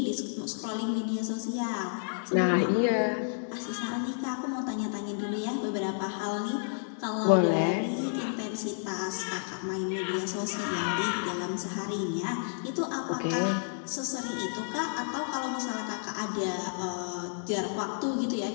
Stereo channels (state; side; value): silent; right; digital silence